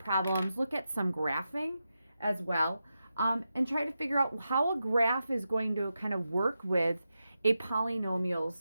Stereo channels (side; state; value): both; inverted; correlation -0.89